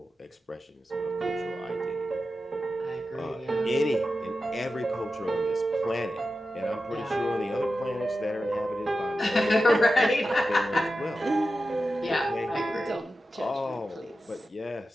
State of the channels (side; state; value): both; normal; correlation 0.92